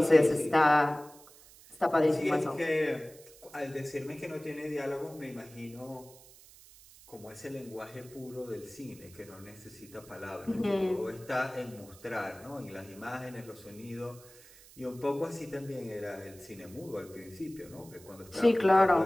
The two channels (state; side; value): noise; right; hiss, 22 dB below the sound